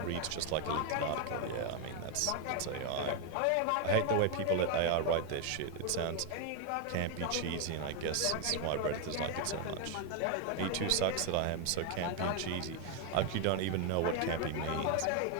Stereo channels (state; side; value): different; both; correlation 0.01